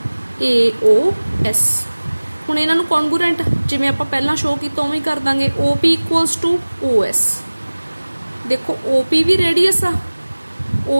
AOS। ਹੁਣ ਇਹਨਾਂ ਨੂੰ ਕੌਨਗਰੂਐਂਟ ਜਿਵੇਂ ਆਪਾਂ ਪਹਿਲਾਂ ਸ਼ੋ ਕੀਤਾ ਉਵੇਂ ਕਰ ਦਾਂਗੇ। OP ਇਕੁਅਲਸ ਟੂ OS, देखो OP भी रेडियस आ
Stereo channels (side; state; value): both; inverted; correlation -1.00